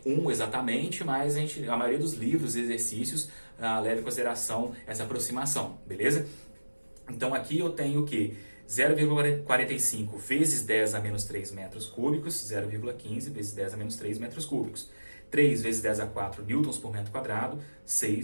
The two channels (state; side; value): inverted; both; correlation -1.00